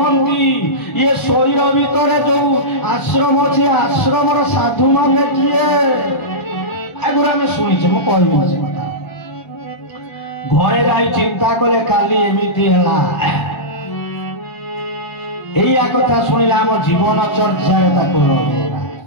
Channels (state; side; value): late; right; 1.4 ms